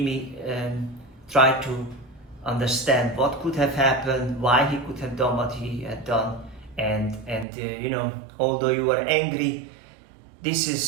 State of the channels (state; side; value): drops out; left; at 7.5 s